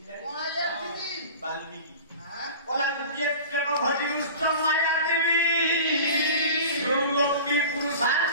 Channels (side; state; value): both; inverted; correlation -0.37